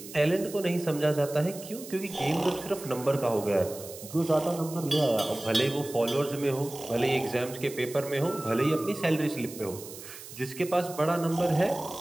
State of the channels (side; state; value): right; noise; hiss, 14 dB below the sound